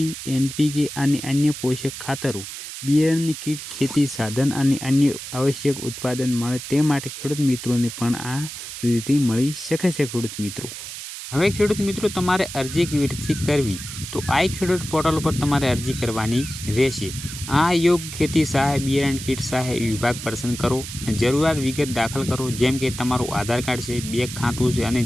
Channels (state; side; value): noise; right; hiss, 10 dB below the sound